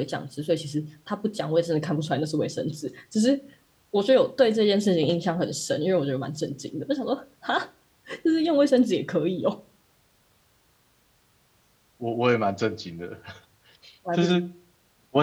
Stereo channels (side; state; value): both; identical; correlation 1.00